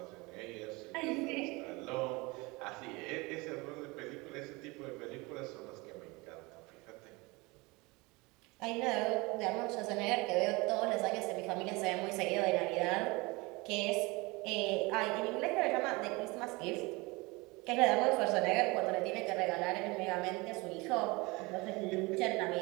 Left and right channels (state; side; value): quieter; left; 24.6 dB